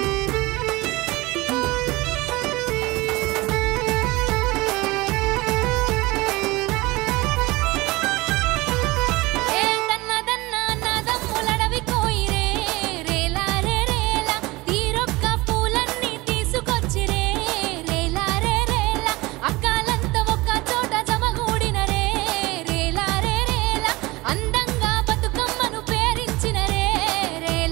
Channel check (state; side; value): quieter; left; 21.7 dB